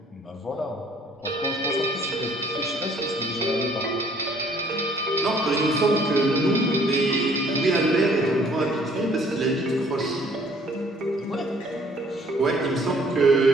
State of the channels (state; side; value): normal; both; correlation 0.59